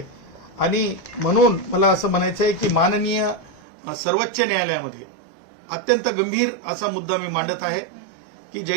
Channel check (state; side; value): drops out; left; at 3.6 s